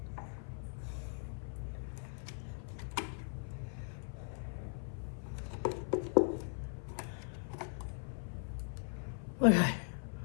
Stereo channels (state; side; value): silent; right; 51 dB below the other